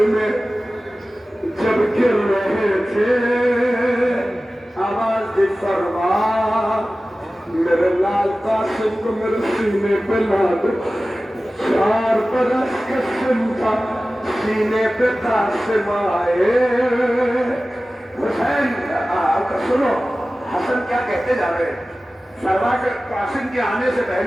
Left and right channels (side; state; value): both; normal; correlation 0.96